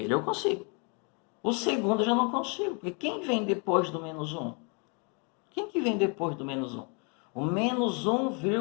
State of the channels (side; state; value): right; quieter; 35.9 dB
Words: eu consigo. O segundo eu já não consigo, porque quem vem depois do menos 1? Quem que vem depois do menos 1? O menos